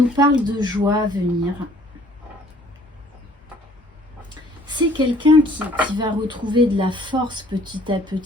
parle de joie à venir. C'est quelqu'un qui va retrouver de la force petit à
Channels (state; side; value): normal; both; correlation 0.57